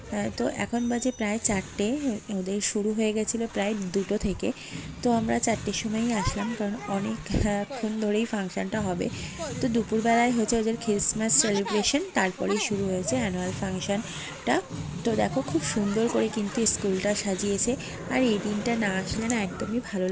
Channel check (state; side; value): identical; both; correlation 1.00